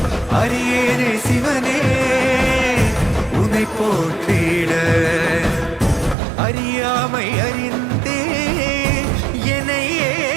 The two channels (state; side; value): drops out; left; at 6.2 s